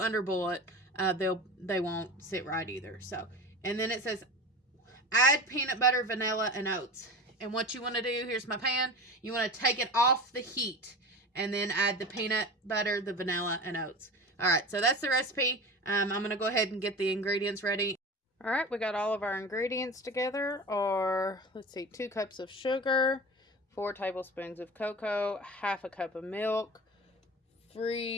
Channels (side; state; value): both; normal; correlation 0.32